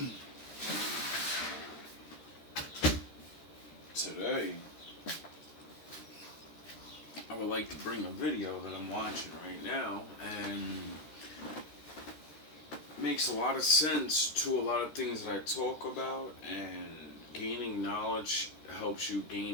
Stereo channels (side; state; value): right; late; 13 ms